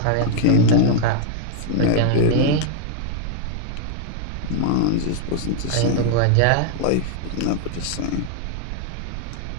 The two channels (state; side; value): different; both; correlation -0.01